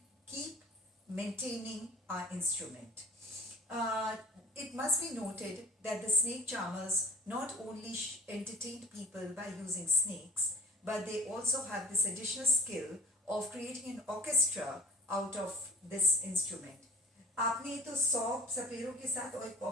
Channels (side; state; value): both; normal; correlation 0.46